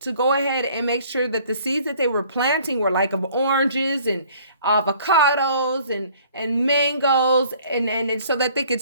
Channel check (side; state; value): both; inverted; correlation -0.55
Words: go ahead and make sure that the seeds that they were planting were like of oranges and avocados and mangoes, and so that they could